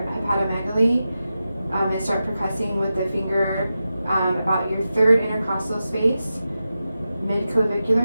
hepatomegaly and start percussing with the finger about your 3rd intercostal space, mid-clavicular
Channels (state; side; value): inverted; both; correlation -0.92